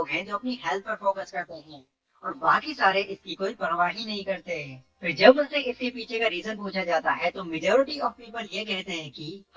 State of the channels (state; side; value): identical; both; correlation 1.00